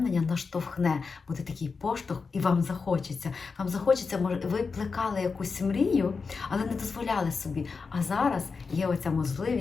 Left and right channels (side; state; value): right; quieter; 4.8 dB